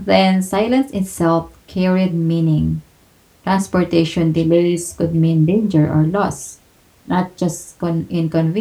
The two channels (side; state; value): both; identical; correlation 1.00